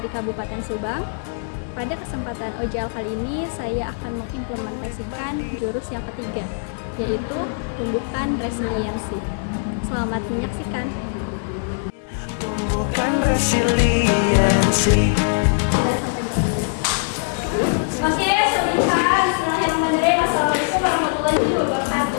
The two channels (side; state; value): right; silent; digital silence